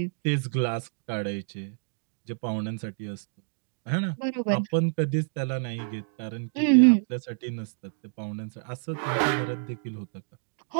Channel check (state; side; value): silent; left; digital silence